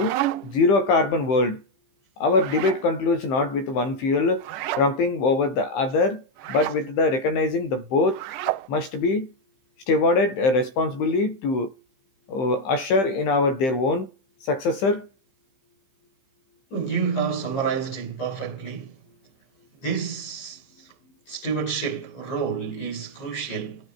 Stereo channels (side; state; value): right; late; 15 ms